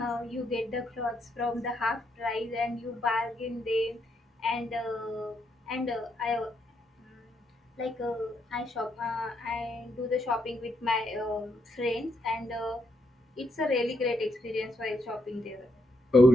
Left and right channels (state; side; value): normal; both; correlation 0.77